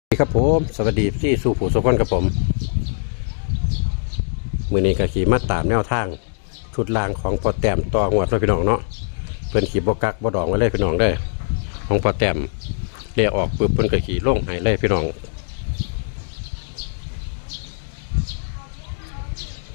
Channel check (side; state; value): right; silent; digital silence